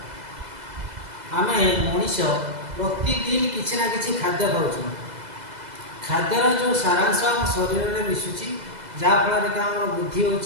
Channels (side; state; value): left; late; 2.0 ms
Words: आम मनीष प्रतिदिन किसी ना कि खाद्य खाऊ। खाद्यर जो सारांश आम शरीर में मिसुची जहाँफल कि आम बुद्धि हो